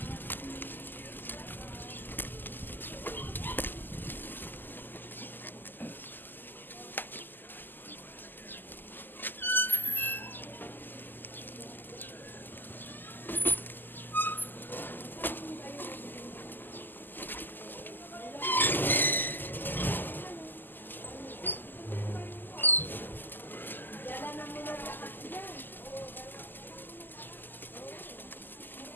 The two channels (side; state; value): right; late; 0.090 ms